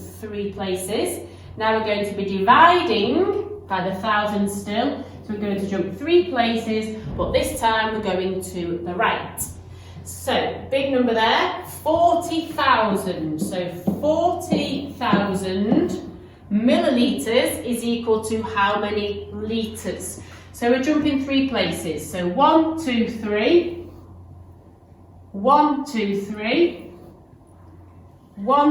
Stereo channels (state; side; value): identical; both; correlation 1.00